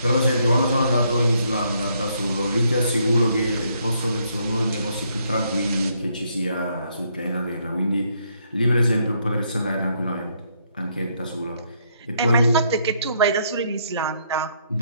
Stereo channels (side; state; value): both; inverted; correlation -0.72